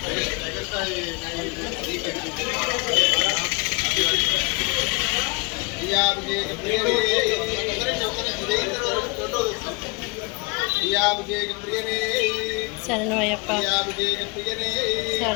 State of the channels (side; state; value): right; quieter; 30.1 dB